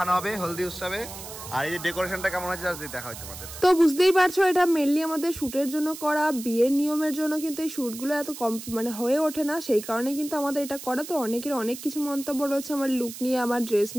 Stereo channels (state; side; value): noise; right; hiss, 12 dB below the sound